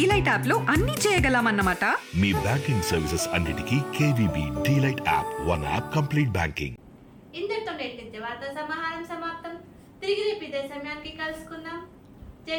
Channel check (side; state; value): both; identical; correlation 1.00